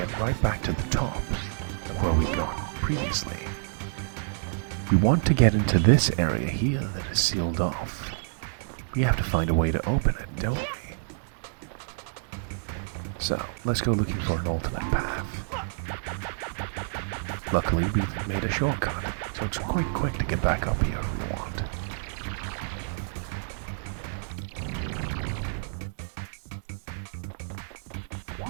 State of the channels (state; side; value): silent; left; 59 dB below the other